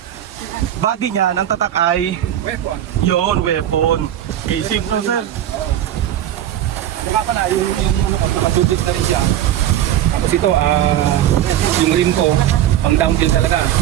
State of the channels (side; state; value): left; quieter; 11.6 dB